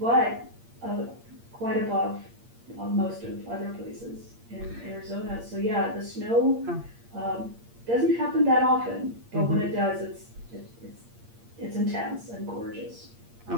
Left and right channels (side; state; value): left; late; 8.6 ms